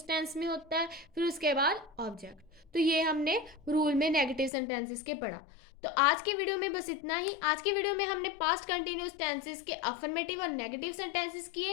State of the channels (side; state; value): right; drops out; at 4.5 s